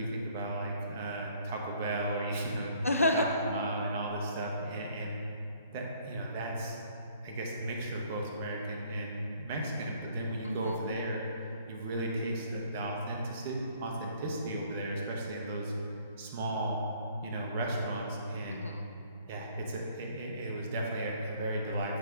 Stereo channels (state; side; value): inverted; both; correlation -0.61